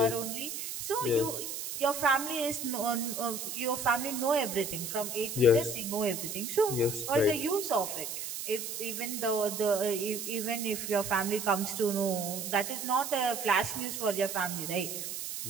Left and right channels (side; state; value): right; noise; hiss, 6 dB below the sound